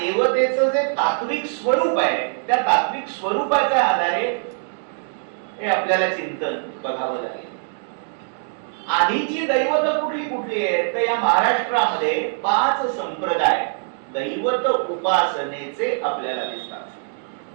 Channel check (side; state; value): left; silent; 64 dB below the other